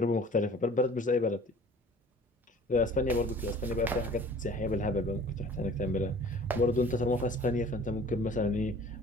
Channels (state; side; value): normal; both; correlation 0.48